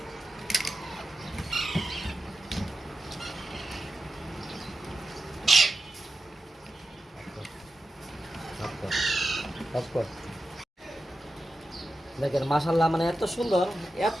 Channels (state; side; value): normal; both; correlation 0.91